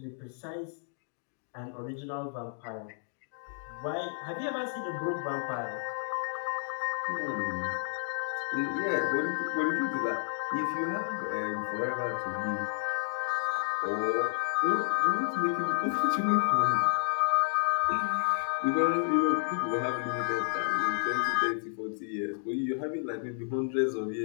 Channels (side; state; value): right; silent; digital silence